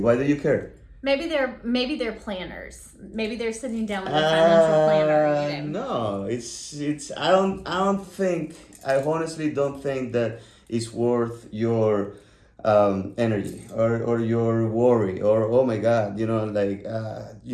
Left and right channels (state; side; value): identical; both; correlation 1.00